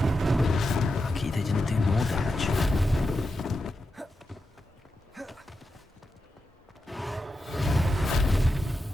Lucky they didn't do more damage.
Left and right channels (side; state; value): both; normal; correlation 0.88